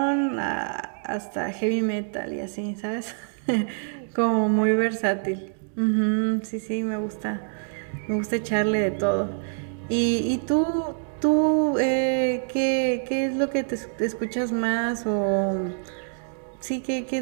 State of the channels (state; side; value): silent; left; digital silence